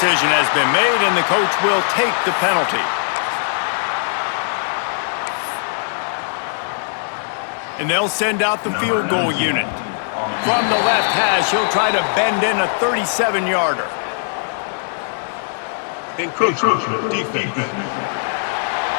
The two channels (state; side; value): silent; right; digital silence